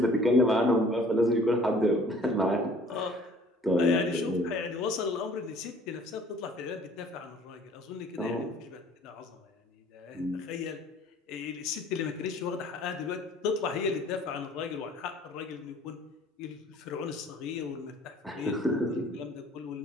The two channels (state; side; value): normal; both; correlation 0.53